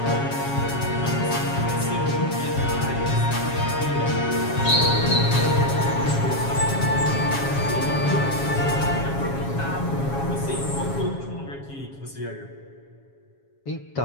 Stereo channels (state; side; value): late; right; 7.3 ms